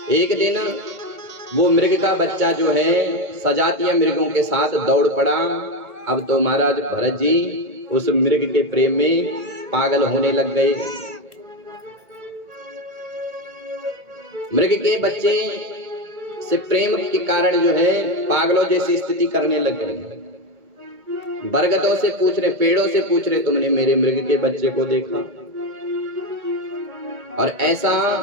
एक दिन वो मृग का बच्चा जो है सजातीय मृगों के साथ दौड़ पड़ा। अब तो महाराज भरत जी उस मृग के प्रेम में पागल होने लग गए। मृग के बच्चे से प्रेम के कारण जो है पागलों जैसी स्थिति करने लग गए। बरगदों से पूछ रहे, पेड़ों से पूछ रहे, तुमने मेरे मृग के बच्चे को देखा? और ऐसा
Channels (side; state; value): left; late; 2.2 ms